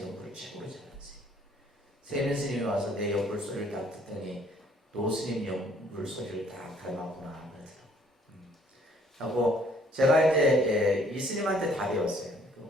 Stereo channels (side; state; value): both; normal; correlation 0.61